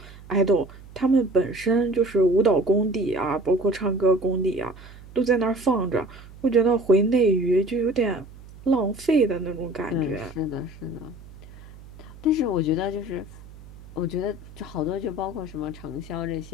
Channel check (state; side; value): noise; right; hum, 19 dB below the sound